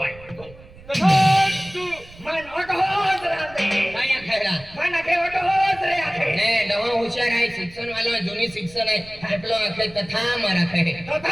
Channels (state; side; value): noise; right; rumble, 21 dB below the sound